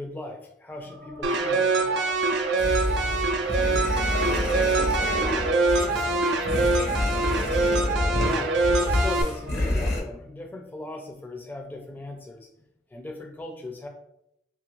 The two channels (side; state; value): both; normal; correlation 0.52